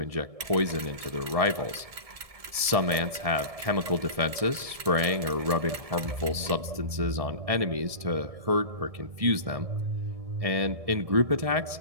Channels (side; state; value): left; late; 1.7 ms